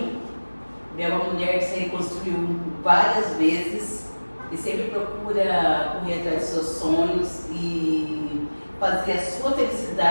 Bel é uma mulher que se reconstruiu várias vezes e sempre procura correr atrás dos seus sonhos e fazer a sua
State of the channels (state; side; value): inverted; both; correlation -1.00